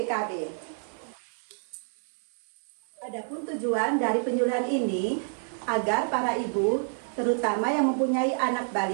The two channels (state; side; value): silent; left; digital silence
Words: Adapun tujuan dari penyuluhan ini agar para ibu, terutama yang mempunyai anak